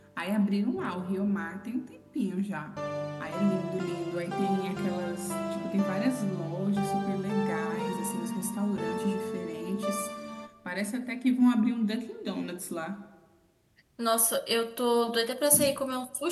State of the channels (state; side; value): identical; both; correlation 1.00